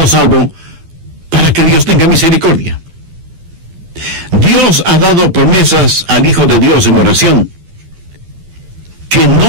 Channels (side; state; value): left; late; 12 ms